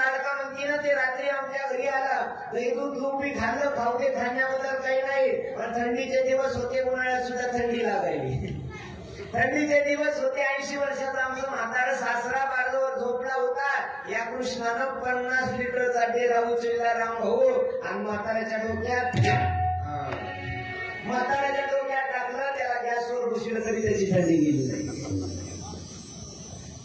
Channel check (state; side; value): identical; both; correlation 1.00